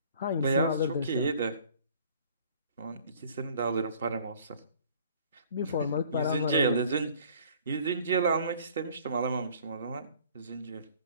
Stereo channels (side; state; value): both; inverted; correlation -0.53